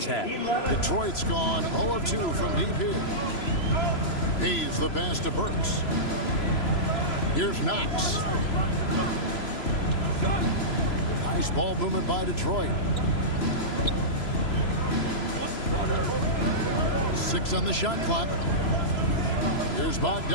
had. Detroit's gone 0 of 2 from deep here. Hayes the pass to Burks. Here's Knox. Nice ball movement by Detroit. 6 on the shot clock. Here's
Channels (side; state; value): right; late; 3.0 ms